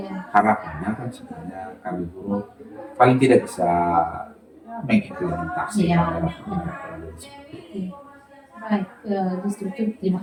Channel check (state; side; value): identical; both; correlation 1.00